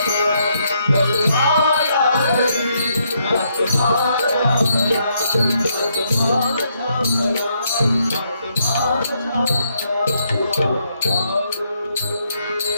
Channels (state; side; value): inverted; both; correlation -0.75